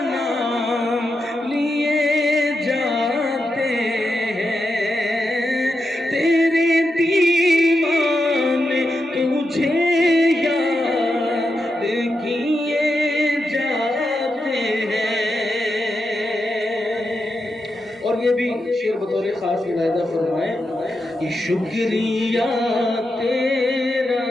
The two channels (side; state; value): both; normal; correlation 0.86